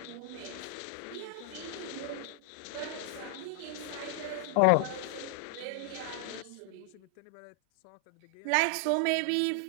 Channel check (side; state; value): both; different; correlation 0.00